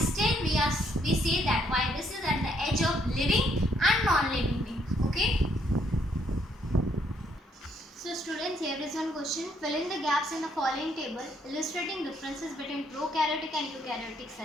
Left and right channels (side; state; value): both; normal; correlation 0.70